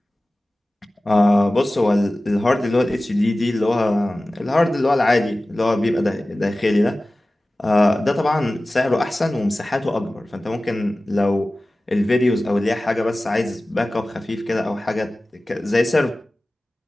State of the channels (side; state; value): both; normal; correlation 0.97